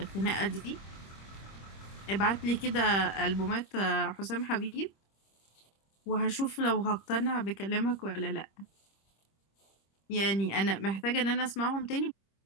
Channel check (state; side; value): late; right; 26 ms